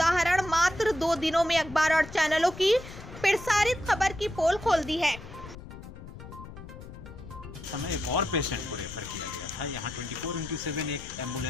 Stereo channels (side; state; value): left; noise; rumble, 14 dB below the sound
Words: मात्र 2 दिनों में अखबार और चैनलों की प्रसारित खबर की पोल खोल दी है। समय एक और पेशेंट को रेफर किया गया था। यहाँ 24/7 एक